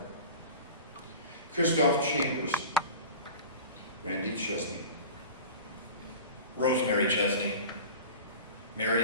Christoph Chambers, Randy Chesney, Rosemary Chesney,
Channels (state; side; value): inverted; both; correlation -0.36